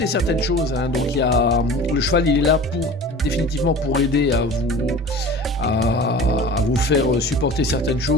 certaines choses. Donc le cheval, il est là définitivement pour aider à vous faire supporter certaines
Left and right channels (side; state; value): both; normal; correlation 0.39